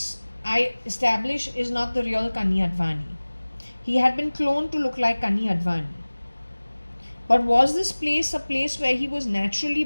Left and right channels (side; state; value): both; inverted; correlation -1.00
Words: I establish, is not the real Kani Advani. He had been cloned to look like Kani Advani. But was this place a place where he was naturally